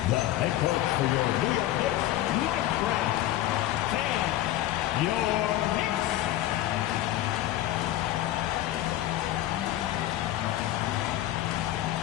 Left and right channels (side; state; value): right; quieter; 14.1 dB